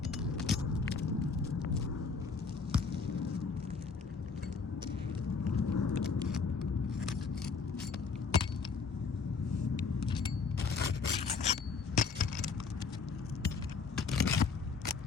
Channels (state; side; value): quieter; right; 5.0 dB